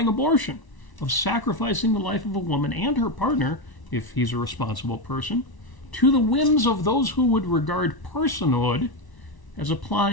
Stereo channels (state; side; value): late; right; 1.0 ms